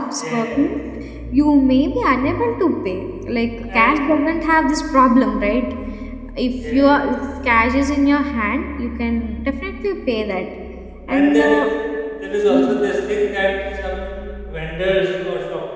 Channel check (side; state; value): both; identical; correlation 1.00